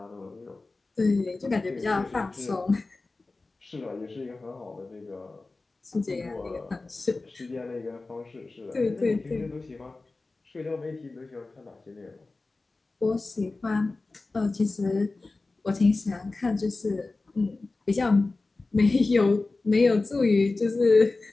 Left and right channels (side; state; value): right; quieter; 3.4 dB